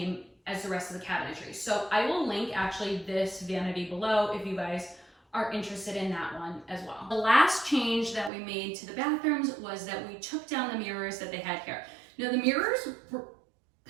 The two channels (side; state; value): left; drops out; at 8.3 s